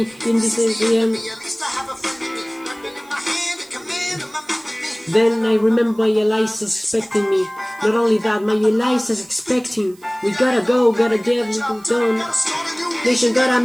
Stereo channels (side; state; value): right; noise; hiss, 27 dB below the sound